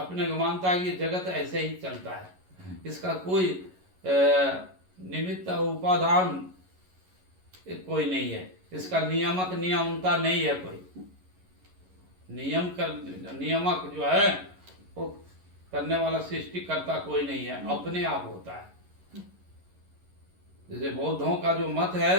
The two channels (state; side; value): late; left; 11 ms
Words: को मानता है कि जगत ऐसे ही चलता है, इसका कोई निमित्त उपादान कोई नहीं है, इसका नियामक नियमता नहीं है, कोई नियामक जो है वो करने वाला सृष्टि करता कोई नहीं है, अपने आप होता है। जैसे बौद्धों का जो मत